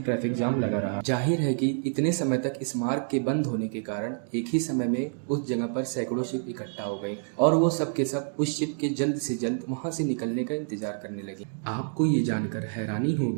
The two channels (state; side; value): silent; left; digital silence